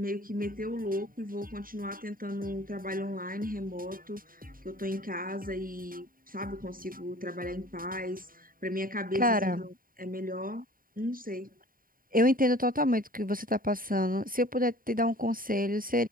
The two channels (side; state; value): left; late; 0.41 ms